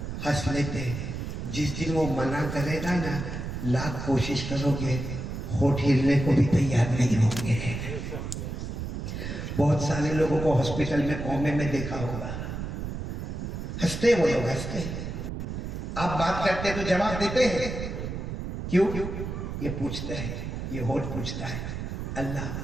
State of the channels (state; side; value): noise; right; rumble, 5 dB below the sound